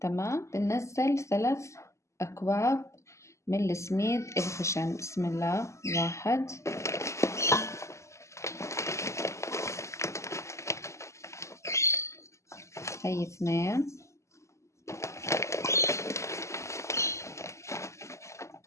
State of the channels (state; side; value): late; right; 0.14 ms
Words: تمام. بننزل 3 أكواب من السميد الخشن. بسم الله. 1، هي 2،